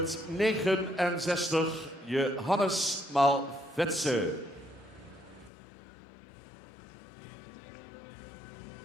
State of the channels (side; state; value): right; drops out; at 5.5 s